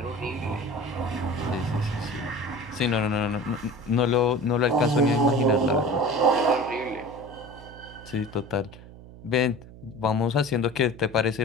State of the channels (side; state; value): right; noise; hum, 18 dB below the sound